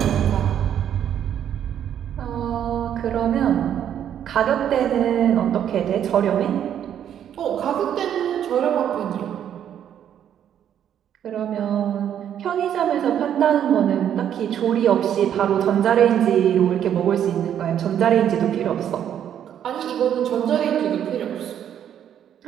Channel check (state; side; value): quieter; left; 9.7 dB